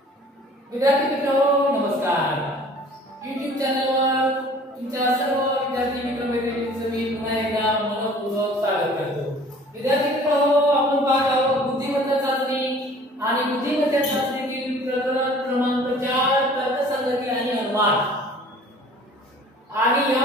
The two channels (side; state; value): both; normal; correlation 0.50